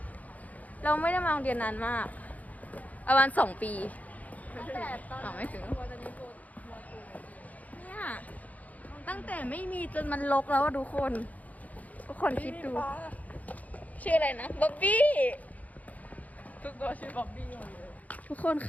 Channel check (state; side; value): late; right; 0.075 ms